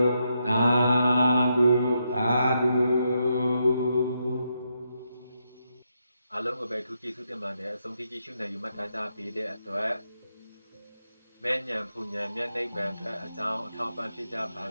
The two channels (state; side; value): inverted; both; correlation -0.81